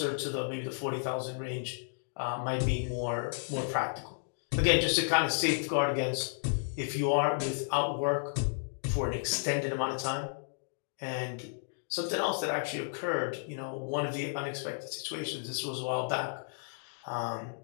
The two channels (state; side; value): silent; right; digital silence